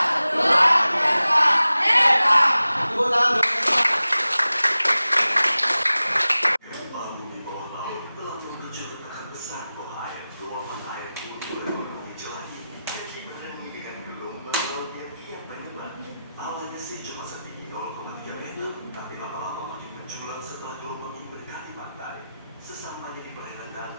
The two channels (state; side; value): inverted; both; correlation -0.95